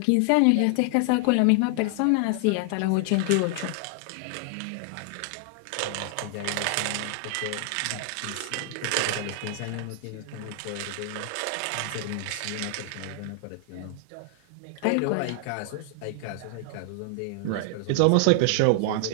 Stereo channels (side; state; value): both; different; correlation 0.00